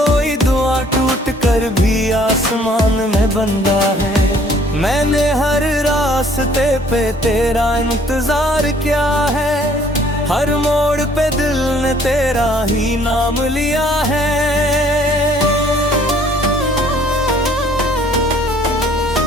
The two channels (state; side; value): normal; both; correlation 0.58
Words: दुआ टूट कर भी आसमान में बंदा है। मैंने हर रास्ते पे तेरा इंतजार किया है, हर मोड़ पे दिल ने तेरा ही नाम लिया है।